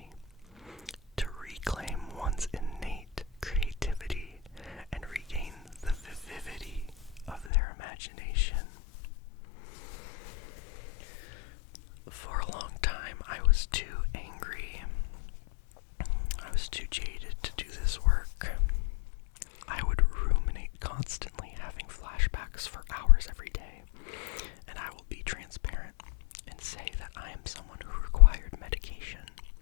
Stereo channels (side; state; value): right; drops out; at 7.5 s